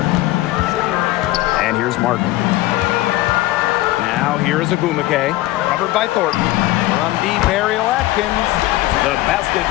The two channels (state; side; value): quieter; right; 17.0 dB